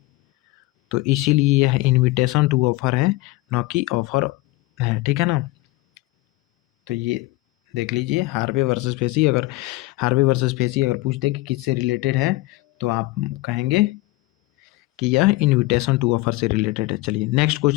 तो इसीलिए यह इनविटेशन टू ऑफर है, न कि ऑफर है, ठीक है ना। तो ये देख लीजिए, हार्वे वर्सेस फेसी। अगर हार्वे वर्सेस फेसी अगर पूछते कि किससे रिलेटेड है, तो आप कहेंगे कि यह इनविटेशन टू ऑफर से रिलेटेड है। चलिए नेक्स्ट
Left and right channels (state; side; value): quieter; right; 19.9 dB